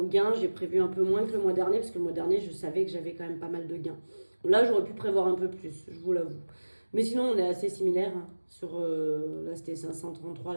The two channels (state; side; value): inverted; both; correlation -1.00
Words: gain, j'ai prévu un peu moins que le mois dernier. Parce que le mois dernier, je savais que j'avais quand même pas mal de gains. Là, j'aurais pu prévoir un peu plus, je vous l'avoue. Mais sinon, on est assez similaires. Là, c'était 533,